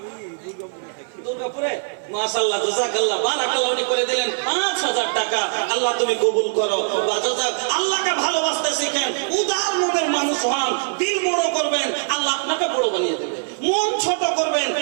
দুর্গাপুরে, মাশাআল্লাহ, জাযাকাল্লাহ, বারাকাল্লাহ, উনি করে দিলেন 5000 টাকা। আল্লাহ তুমি কবুল করো। আল্লাহকে ভালোবাসতে শিখেন, উদার মনের মানুষ হন, দিল বড় করবেন, আল্লাহ আপনাকে বড় বানিয়ে দেবে। মন ছোট করবেন,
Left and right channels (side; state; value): left; silent; 56 dB below the other